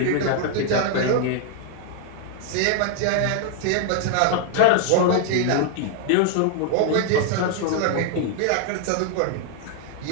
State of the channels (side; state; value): both; different; correlation 0.00